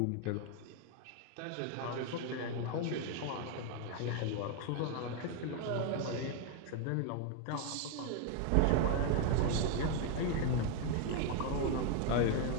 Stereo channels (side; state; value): both; different; correlation 0.01